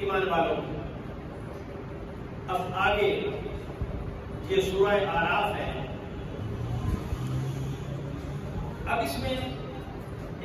ईमान वालों। अब आगे ये सूरह आराफ है। अब इसमें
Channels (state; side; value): identical; both; correlation 1.00